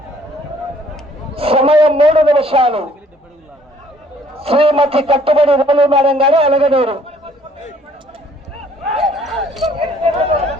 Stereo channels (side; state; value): both; normal; correlation 0.60